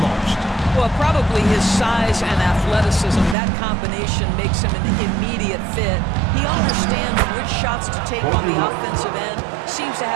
most? Well, probably his size and athleticism. That combination makes him an immediate fit. He understands which shots to take on the offensive end, seems to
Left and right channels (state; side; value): drops out; left; at 3.4 s